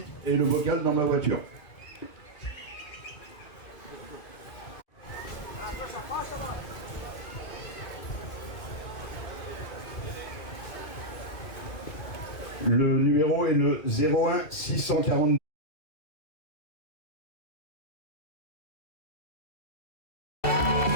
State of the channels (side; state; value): right; late; 2.3 ms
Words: et le bocal dans ma voiture. Le numéro est le 01 642.